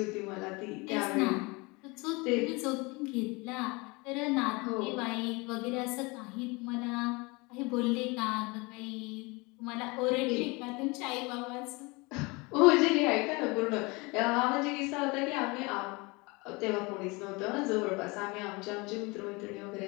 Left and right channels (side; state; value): right; quieter; 26.2 dB